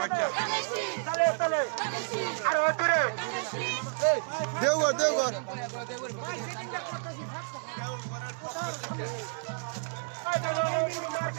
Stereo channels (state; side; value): silent; left; 57 dB below the other